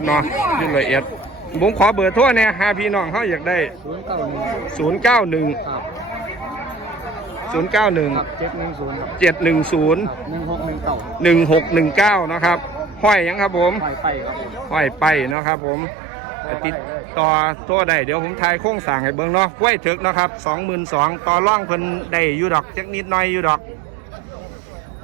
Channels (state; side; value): drops out; left; at 15.4 s